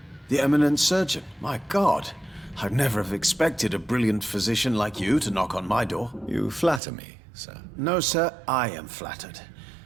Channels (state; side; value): drops out; left; at 6.8 s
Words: The eminent surgeon? My God, I'd never have expected a brilliant physician like you to knock on my door. You flatter me, sir. No, sir, I am flattered.